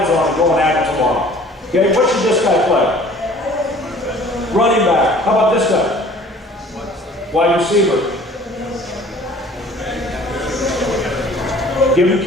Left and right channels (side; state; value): both; normal; correlation 0.50